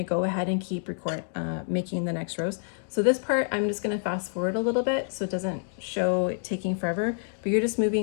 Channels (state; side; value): silent; right; digital silence